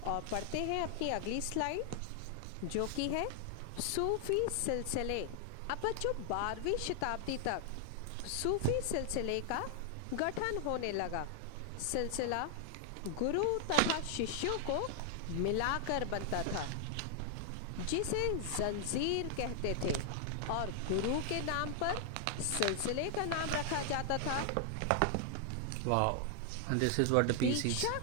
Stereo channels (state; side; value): different; both; correlation 0.00